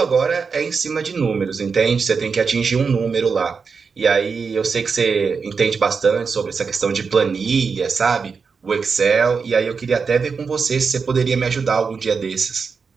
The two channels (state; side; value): quieter; left; 5.3 dB